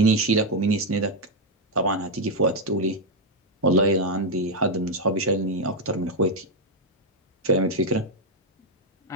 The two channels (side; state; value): both; normal; correlation 0.02